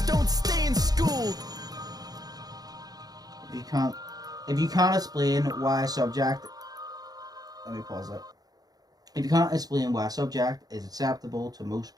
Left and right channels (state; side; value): late; left; 0.19 ms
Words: don't stay in school. If you can't explain why a subject, let me pause that. If you can't explain why a subject is acceptable to most